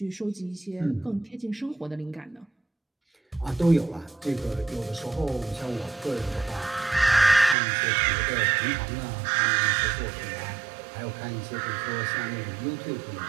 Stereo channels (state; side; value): drops out; left; at 7.6 s